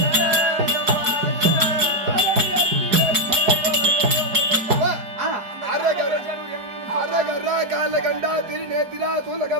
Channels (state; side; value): late; left; 4.8 ms